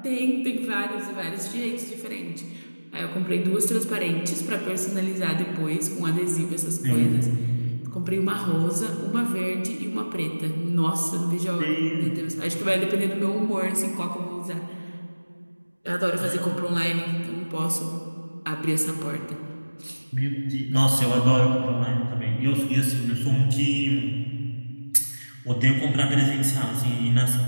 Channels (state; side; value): inverted; both; correlation -1.00